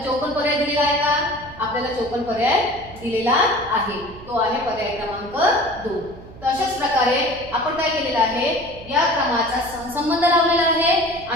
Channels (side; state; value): right; noise; hum, 18 dB below the sound